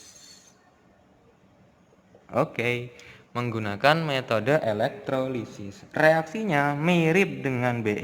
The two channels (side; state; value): both; identical; correlation 1.00